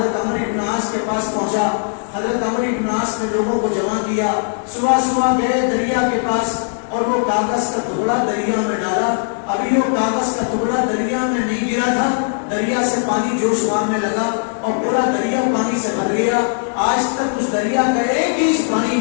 عمرو بن عاص کے پاس پہنچا۔ حضرت عمرو بن عاص نے لوگوں کو جمع کیا، صبح صبح گئے دریا کے پاس اور وہ کاغذ کا ٹکڑا دریا میں ڈالا۔ ابھی وہ کاغذ کا ٹکڑا دریا میں نہیں گرا تھا، دریا سے پانی جوش مارنے لگا اور پورا دریا پانی سے بھر گیا۔ آج تک اس دریا کا ایک انچ پانی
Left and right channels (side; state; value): right; silent; digital silence